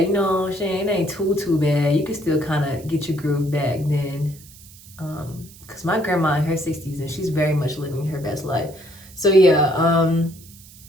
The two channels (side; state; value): right; noise; hiss, 21 dB below the sound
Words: You know what I'm saying? It ain't too bad. You can still kind of get your groove back then. Because my grandma in her 60s and she's very much living her best life. So yeah,